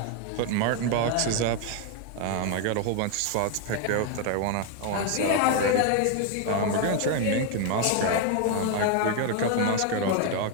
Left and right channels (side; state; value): both; different; correlation 0.01